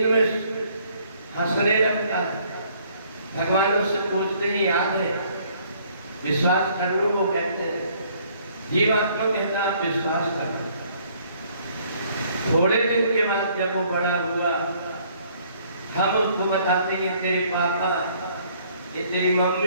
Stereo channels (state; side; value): inverted; both; correlation -0.62